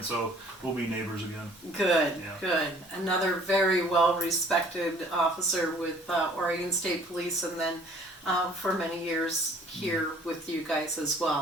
so we'll be neighbors again. Good, good. Another very well-respected officer with Oregon State Police, and then for many years here with you guys as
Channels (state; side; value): normal; both; correlation 0.55